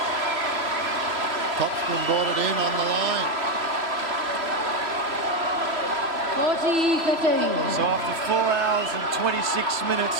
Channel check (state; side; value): late; left; 3.3 ms